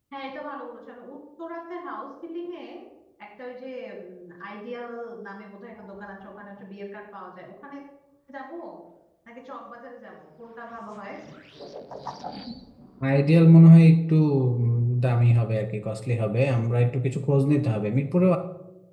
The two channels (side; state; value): both; identical; correlation 1.00